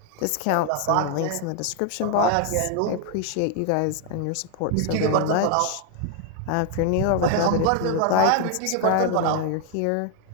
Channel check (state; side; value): different; both; correlation 0.01